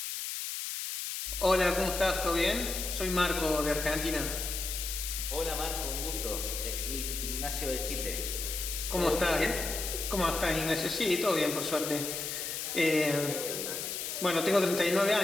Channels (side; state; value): left; noise; hiss, 4 dB below the sound